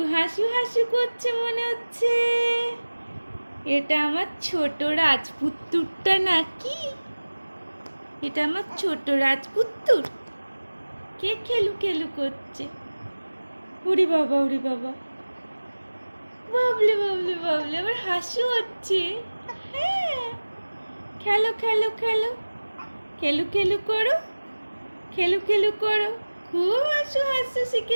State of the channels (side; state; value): both; inverted; correlation -1.00